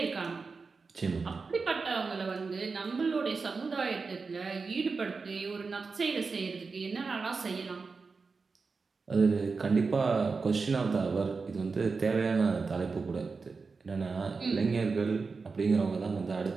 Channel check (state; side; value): quieter; left; 4.6 dB